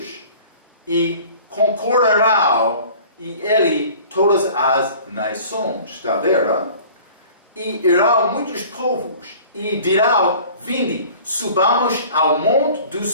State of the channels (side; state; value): both; inverted; correlation -0.46